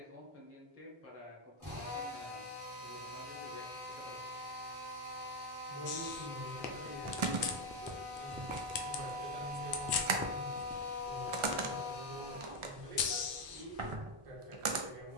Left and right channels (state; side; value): late; left; 1.4 ms